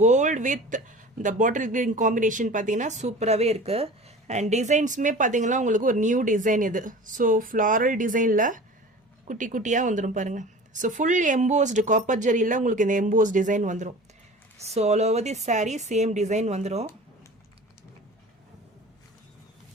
கோல்டு வித் இந்த பாட்டில் கிரீன் காம்பினேஷன் பார்த்தீங்கன்னா சூப்பராகவே இருக்குது. அண்ட் டிசைன்ஸுமே பார்த்தீங்கன்னா உங்களுக்கு ஒரு நியூ டிசைன் இது. ஸோ ஃப்ளாரல் டிசைனில் குட்டி குட்டியாக வந்துடும் பாருங்கள். ஸோ ஃபுல் எம்போஸ்டு காப்பர் ஜரியில் உங்களுக்கு இந்த எம்போஸ் டிசைன் வந்துடும். So all over the sari same design வந்துடும்.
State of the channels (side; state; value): both; normal; correlation 0.39